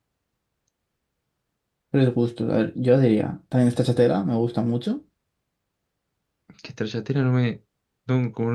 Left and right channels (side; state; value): both; identical; correlation 1.00